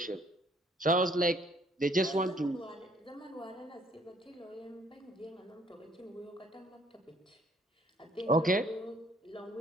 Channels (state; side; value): normal; both; correlation 0.62